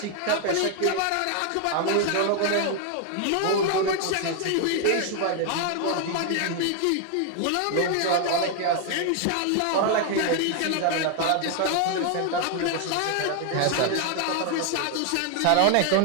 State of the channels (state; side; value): different; both; correlation 0.01